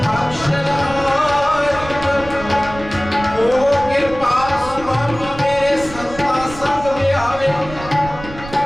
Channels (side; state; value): right; noise; rumble, 14 dB below the sound